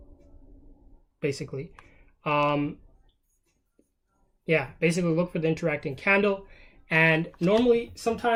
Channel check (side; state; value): both; identical; correlation 1.00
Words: basically. Yeah, basically look for the interacting candle. And normally,